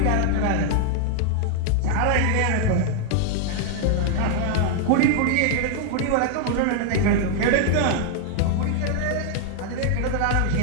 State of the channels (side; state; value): both; different; correlation 0.00